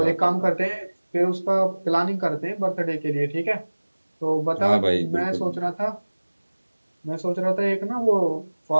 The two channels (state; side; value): inverted; both; correlation -1.00